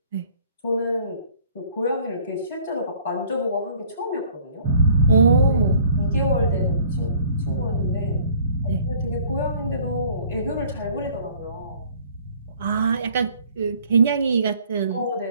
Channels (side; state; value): both; inverted; correlation -0.55